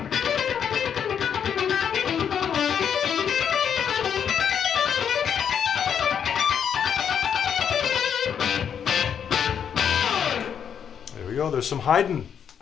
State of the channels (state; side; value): quieter; right; 8.0 dB